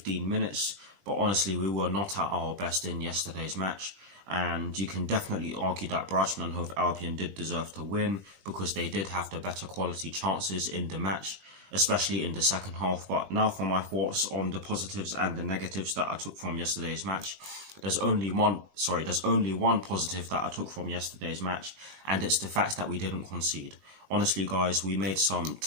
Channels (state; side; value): late; left; 20 ms